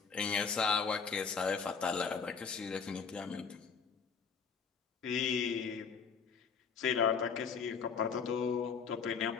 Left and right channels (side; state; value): right; quieter; 5.9 dB